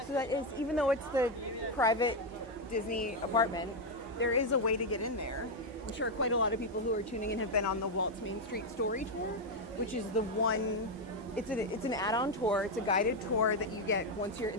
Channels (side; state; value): both; normal; correlation 0.04